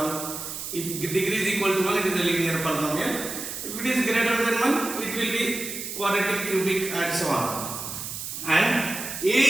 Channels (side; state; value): right; noise; hiss, 7 dB below the sound